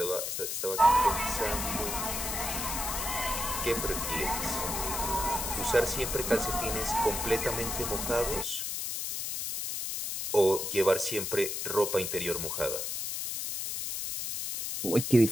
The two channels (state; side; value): noise; left; hiss, 3 dB below the sound